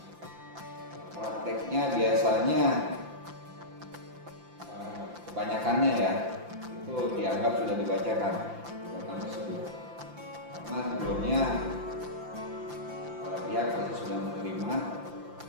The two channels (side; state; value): left; late; 5.8 ms